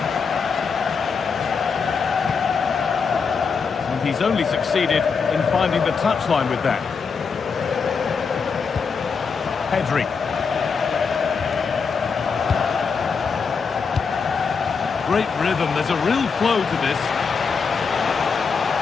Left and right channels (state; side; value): quieter; right; 5.5 dB